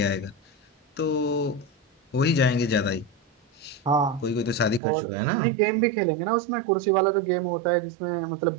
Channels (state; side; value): drops out; left; at 4.8 s